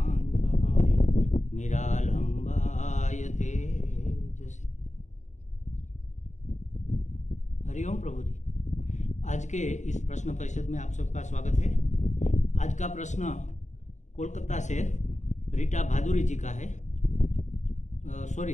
निरालंबाय तेजसे। हरिओम प्रभु जी। आज के इस प्रश्न परिषद में आप सबका स्वागत है। आज का प्रश्न कोलकाता से रीटा भादुरी जी का है,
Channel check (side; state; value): right; late; 0.34 ms